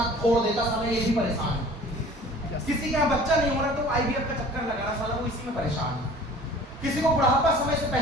फोड़ देता, साला ये भी परेशान है। किसी के यहाँ बच्चा नहीं हो रहा तो IVF का चक्कर लगा रहा, साला वो इसी में परेशान है। किसी को बुढ़ापा समय से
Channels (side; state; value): both; normal; correlation 0.47